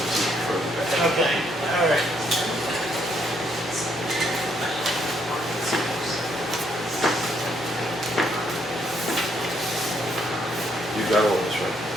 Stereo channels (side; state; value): both; normal; correlation 0.72